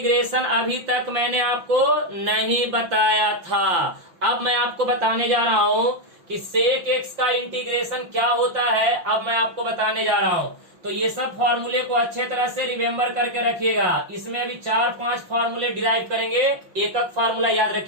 अभी तक मैंने आपको नहीं बताया था। अब मैं आपको बताने जा रहा हूं कि सेक एक्स का इंटीग्रेशन क्या होता है। अब मैं आपको बताने जा रहा हूं। तो ये सब फॉर्मूले को अच्छे तरह से रिमेम्बर करके रखिएगा। इसमें अभी 4-5 फॉर्मूले डिराइव करेंगे। एक फॉर्मूला याद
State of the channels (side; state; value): left; late; 5.9 ms